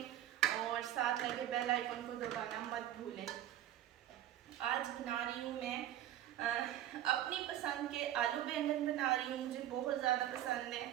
और साथ लगे बेल आइकन को दबाना मत भूलें। आज बना रही हूँ मैं अपनी पसंद के आलू बैंगन बना रही हूँ। मुझे बहुत ज़्यादा पसंद है,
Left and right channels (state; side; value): quieter; left; 12.3 dB